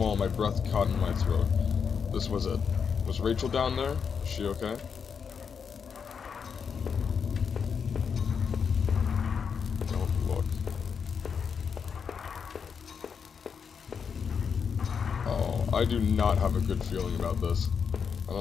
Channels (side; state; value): right; quieter; 6.5 dB